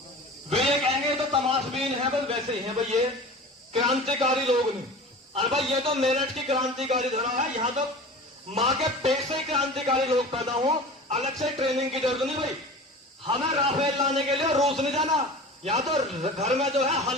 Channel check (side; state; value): both; normal; correlation 0.36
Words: वे ये कहेंगे तो तमाशबीन है, बस वैसे ही है भाई, ये क्रांतिकारी लोग नहीं। अरे भाई, ये तो मेरठ की क्रांतिकारी धरा है, यहाँ तो माँ के पेट से क्रांतिकारी लोग पैदा हो, अलग से ट्रेनिंग की जरूरत नहीं भाई। हमें राफेल लाने के लिए रूस नहीं जाना, यहाँ तो घर में जो है